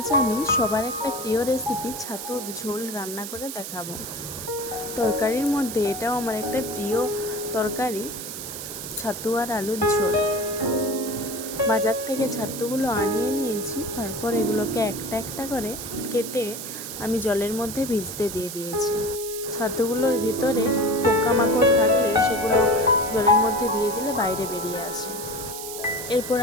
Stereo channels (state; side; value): noise; right; hiss, 8 dB below the sound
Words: আমি সবার একটা প্রিয় রেসিপি ছাতুর ঝোল রান্না করে দেখাবো। তরকারির মধ্যে এটাও আমার একটা প্রিয় তরকারি, ছাতু আর আলুর ঝোল। বাজার থেকে ছাতুগুলো আনিয়ে নিয়েছি, তারপর এগুলোকে একটা একটা করে কেটে আমি জলের মধ্যে ভিজতে দিয়ে দিয়েছি। ছাতুগুলোর ভিতরে পোকামাকড় থাকলে সেগুলো জলের মধ্যে দিয়ে দিলে বাইরে বেরিয়ে আসে। এরপর